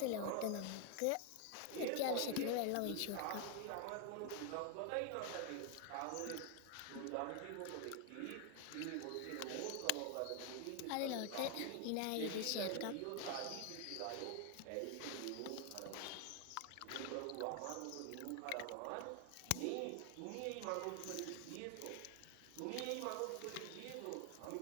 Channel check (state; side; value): different; both; correlation 0.00